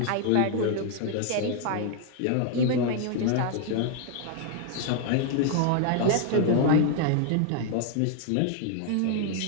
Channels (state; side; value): different; both; correlation 0.00